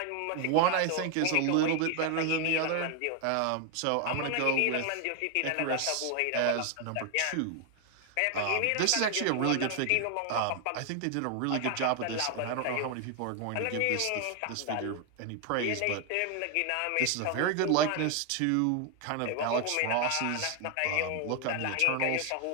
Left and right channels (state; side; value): different; both; correlation 0.00